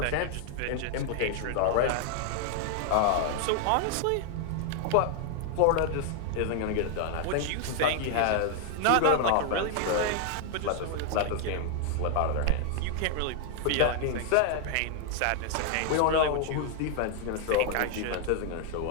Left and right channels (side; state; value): both; different; correlation 0.00